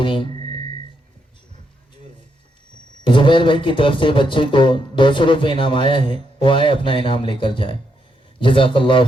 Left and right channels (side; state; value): both; normal; correlation 0.79